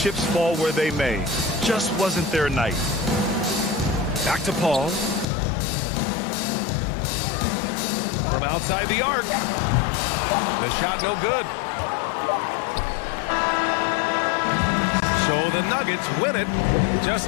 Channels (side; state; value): right; drops out; at 5.2 s